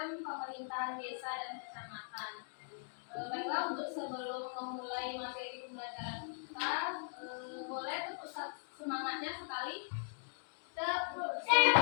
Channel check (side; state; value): right; silent; digital silence